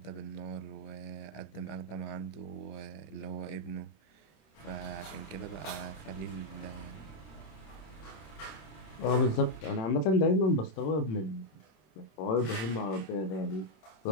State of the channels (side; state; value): right; late; 26 ms